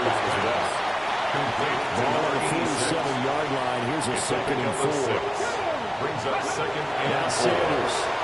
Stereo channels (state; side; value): identical; both; correlation 1.00